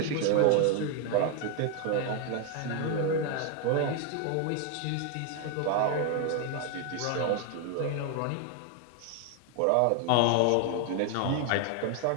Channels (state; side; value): different; both; correlation 0.01